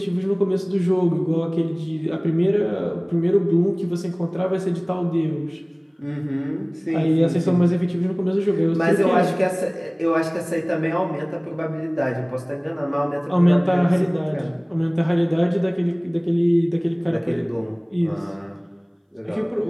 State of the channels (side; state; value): both; identical; correlation 1.00